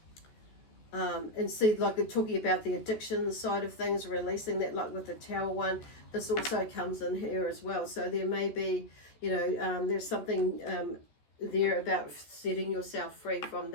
And see, like they're talking about the addiction side of things, releasing that, like with the Tower one, this also comes in here as well. So there may be, there's something there about setting yourself free from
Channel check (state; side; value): late; right; 14 ms